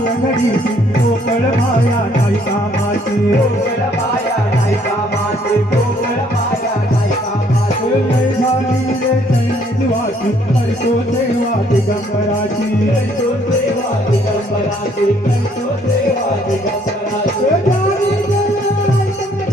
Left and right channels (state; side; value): normal; both; correlation 0.64